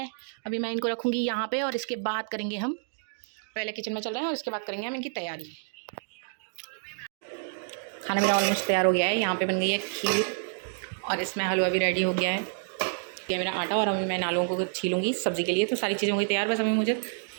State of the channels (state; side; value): silent; left; digital silence